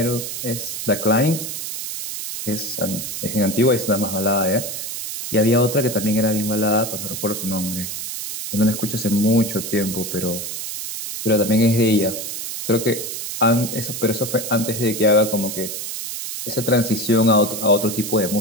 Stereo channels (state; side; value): noise; right; hiss, 6 dB below the sound